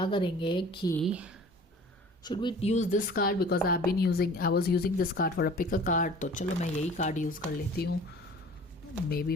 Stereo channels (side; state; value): both; normal; correlation 0.46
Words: करेंगे कि should we use this card, because I was using this card for a pick a card. तो चलो मैं यही कार्ड यूज़ कर लेती हूँ। Maybe